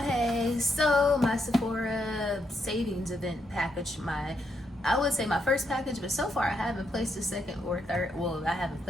So my Sephora savings event package, I would say my first package, but so far I haven't placed a second or third. Well, I haven't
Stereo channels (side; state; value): both; normal; correlation 0.79